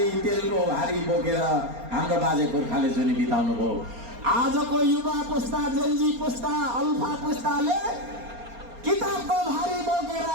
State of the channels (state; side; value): late; left; 4.3 ms